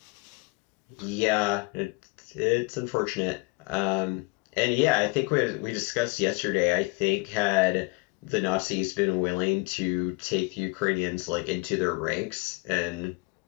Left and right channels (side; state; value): right; quieter; 26.8 dB